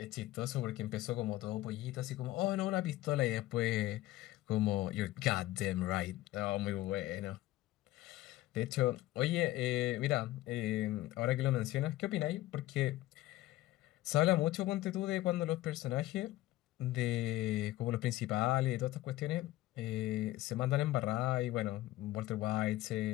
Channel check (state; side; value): quieter; right; 16.3 dB